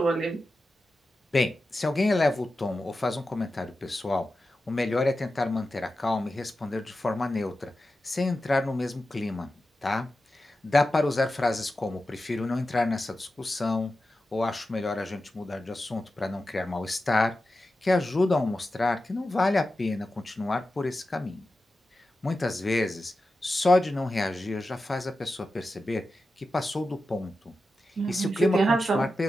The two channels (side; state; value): both; normal; correlation 0.92